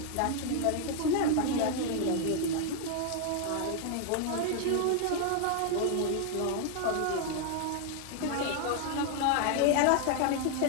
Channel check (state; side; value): different; both; correlation 0.00